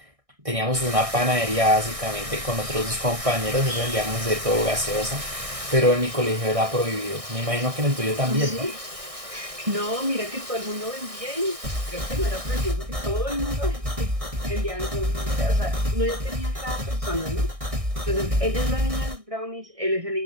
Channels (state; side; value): late; left; 1.6 ms